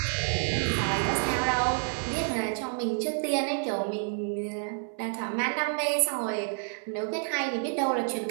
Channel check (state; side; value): silent; left; 59 dB below the other